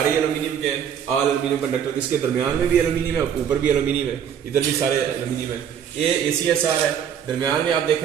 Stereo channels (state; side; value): quieter; left; 8.6 dB